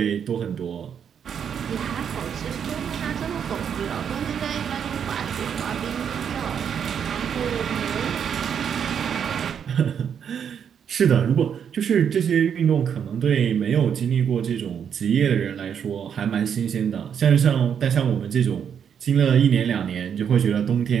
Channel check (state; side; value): quieter; left; 7.9 dB